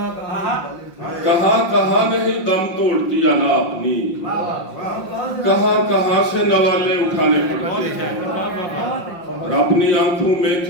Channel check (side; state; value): right; late; 5.6 ms